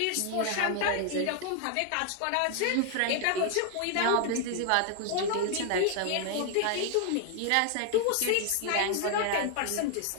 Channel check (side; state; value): both; different; correlation 0.00